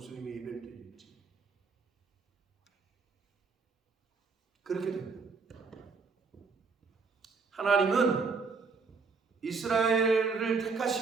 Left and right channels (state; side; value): quieter; left; 4.7 dB